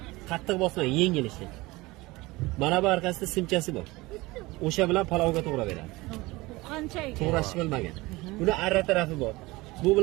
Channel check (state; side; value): quieter; left; 21.3 dB